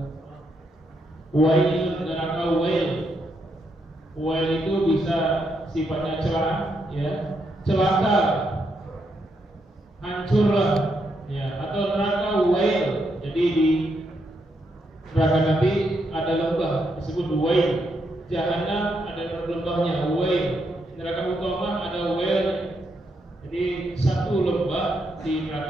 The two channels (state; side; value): normal; both; correlation 0.79